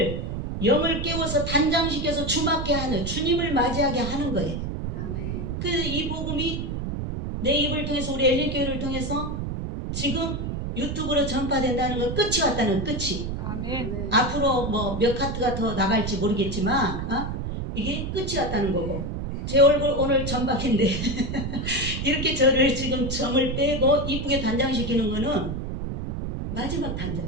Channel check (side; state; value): right; noise; rumble, 4 dB below the sound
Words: 영을 깨워서 단장시켜서 주맞게 하는 주님을 맞이하게 하는 거예요. 아멘. 그 이 복음이 내 입을 통해서 우리 엘리교회를 통해서 지금 유튜브로 전파된다는 건 끝이 왔다는 끝이. 아멘. 앞으로 뭐 몇 카트가 더 나갈지 모르겠지만 이게 끝이 왔다는 거고 제 얼굴 오늘 점박인데 이렇게 저를 지금 점을 빼고 이쁘게 단장시키는 거는 마지막